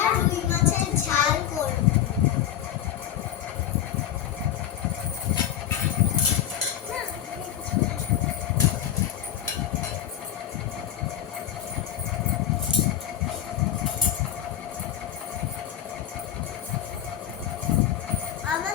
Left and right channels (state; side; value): quieter; right; 11.1 dB